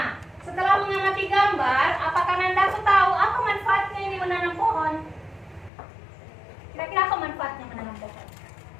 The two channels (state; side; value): drops out; right; at 5.7 s